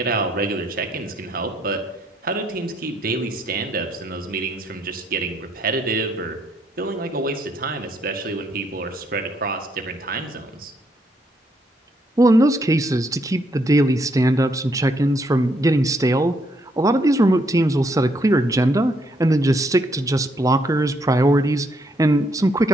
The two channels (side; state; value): both; normal; correlation 0.73